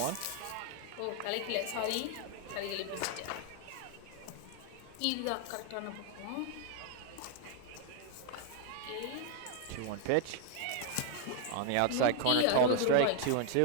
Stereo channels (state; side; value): different; both; correlation 0.00